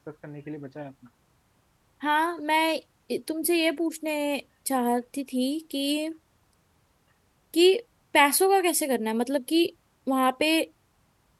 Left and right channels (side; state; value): both; identical; correlation 1.00